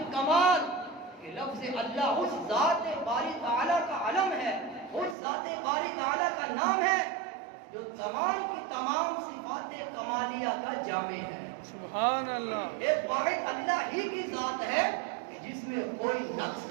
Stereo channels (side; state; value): left; drops out; at 5.2 s